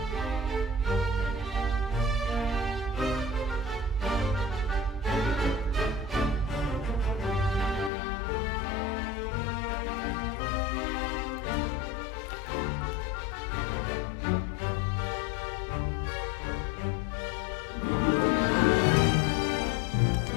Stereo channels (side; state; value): right; drops out; at 7.9 s